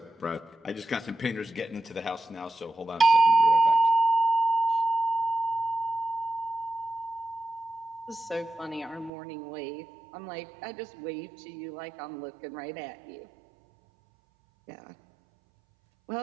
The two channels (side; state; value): left; drops out; at 9.1 s